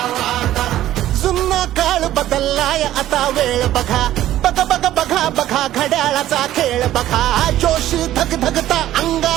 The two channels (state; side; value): quieter; left; 13.4 dB